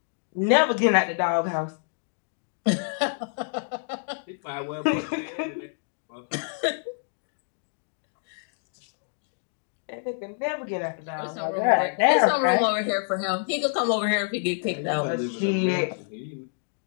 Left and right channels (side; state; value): right; silent; digital silence